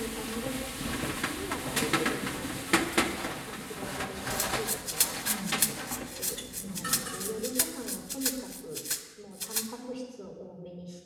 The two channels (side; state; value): both; identical; correlation 1.00